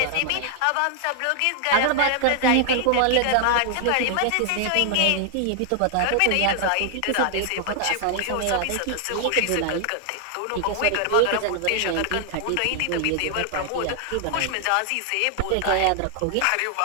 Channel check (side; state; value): both; different; correlation 0.00